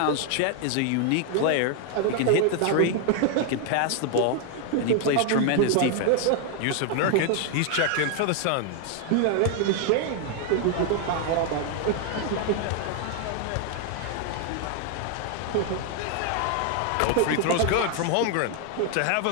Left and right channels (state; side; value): different; both; correlation 0.00